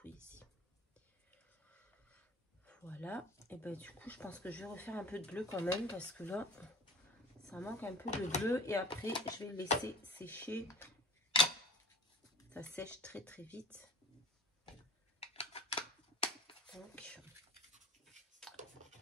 Voilà. Et ben du coup, je pense que je vais refaire un peu de bleu quand même parce que là, ça manque un peu de bleu. Et après, je vais le laisser sécher. Ça sèche très très vite. Donc,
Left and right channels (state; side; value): normal; both; correlation 0.40